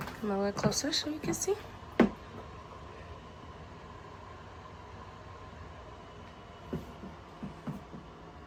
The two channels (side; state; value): both; identical; correlation 1.00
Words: Come a little closer so you can see.